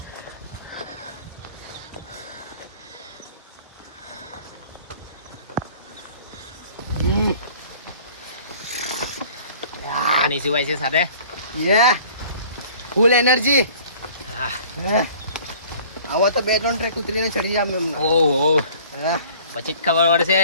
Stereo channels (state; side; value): inverted; both; correlation -0.50